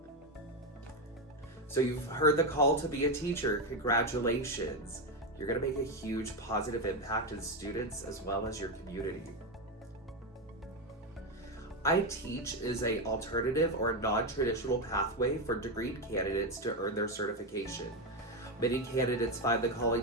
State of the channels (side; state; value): both; normal; correlation 0.09